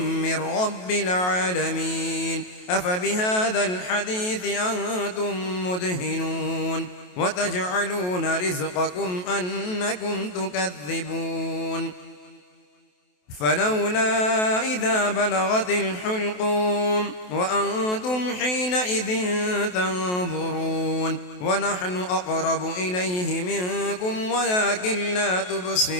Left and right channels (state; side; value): late; right; 28 ms